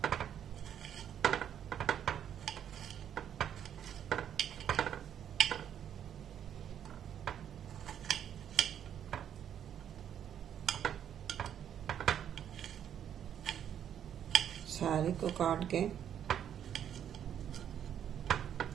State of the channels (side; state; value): left; quieter; 9.4 dB